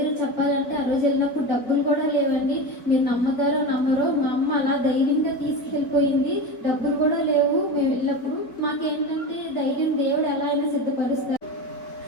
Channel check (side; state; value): right; late; 4.2 ms